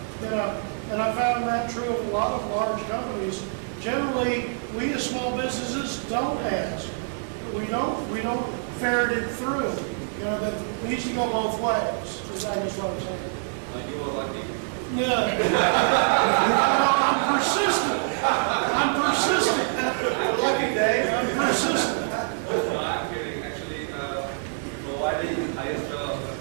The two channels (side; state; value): left; silent; 61 dB below the other